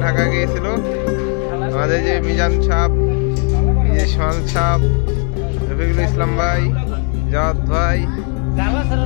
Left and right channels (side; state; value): right; quieter; 39.3 dB